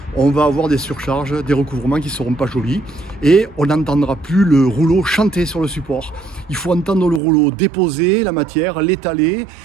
on va avoir des surcharges, des recouvrements qui ne seront pas jolis. Et on n'entendra plus le rouleau chanter sur le support. Il faut entendre le rouleau déposer la matière, l'étaler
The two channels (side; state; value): left; drops out; at 7.2 s